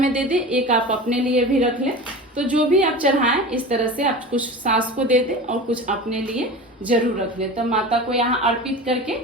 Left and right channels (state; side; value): normal; both; correlation 0.32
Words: दे दे, एक आप अपने लिए भी रख लें। तो जो भी आप चढ़ाएं इस तरह से आप कुछ सास को दे दे और कुछ अपने लिए जरूर रख लें। तो माता को यहाँ अर्पित करके